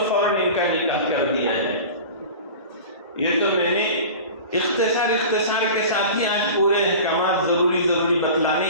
فوراً ان کا نکاح کر دیا جائے۔ یہ تو میں نے اختصار کے ساتھ ہی آج پورے احکامات ضروری بتلانے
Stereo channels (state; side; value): inverted; both; correlation -0.36